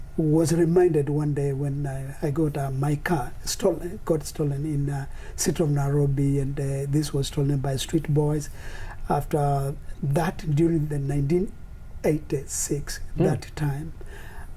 was reminded one day when I got my car got stolen in city of Nairobi, and this was stolen by street boys. After that, during the 1986, that time,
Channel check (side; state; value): both; identical; correlation 1.00